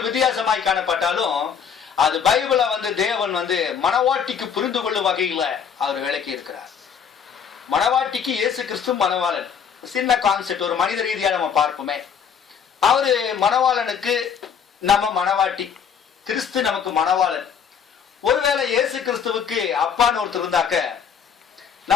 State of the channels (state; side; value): quieter; right; 7.3 dB